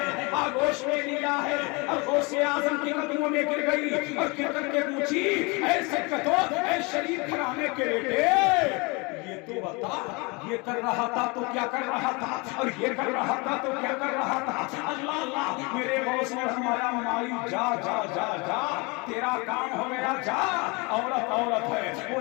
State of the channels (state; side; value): quieter; right; 28.0 dB